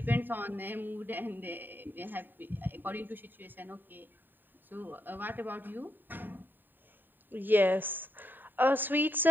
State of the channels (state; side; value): late; left; 0.092 ms